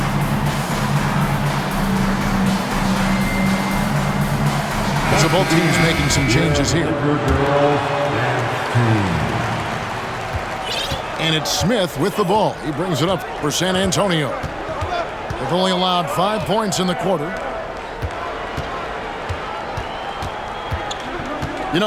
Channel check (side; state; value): both; identical; correlation 1.00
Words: So both teams making some changes here. And it's Smith with the ball. He brings it up for San Antonio. They've only allowed 5 points in the quarter. You